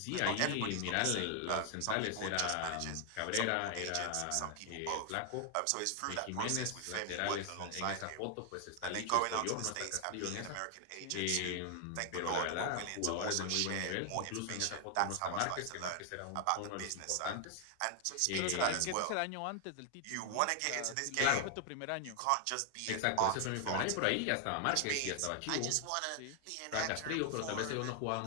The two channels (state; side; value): different; both; correlation 0.00